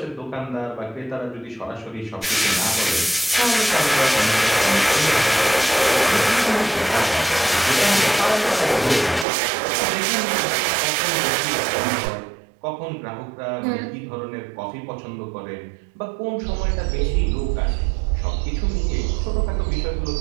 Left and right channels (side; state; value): left; drops out; at 9.2 s